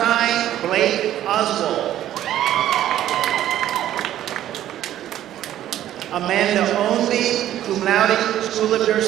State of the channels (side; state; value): left; quieter; 12.3 dB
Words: Blake Oswald. Amanda Ownby, cum laude, School of